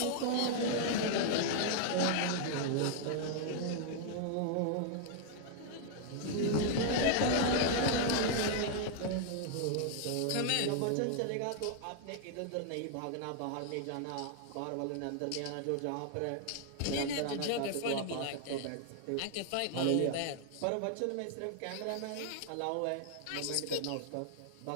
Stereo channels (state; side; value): different; both; correlation 0.00